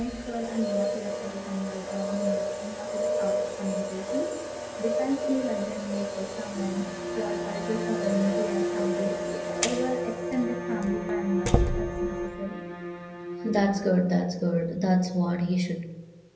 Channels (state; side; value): identical; both; correlation 1.00